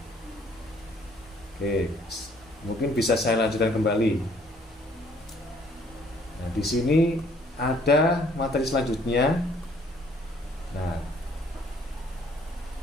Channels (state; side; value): normal; both; correlation 0.61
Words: Oke, mungkin bisa saya lanjutkan kembali. Nah, di sini ada materi selanjutnya. Nah,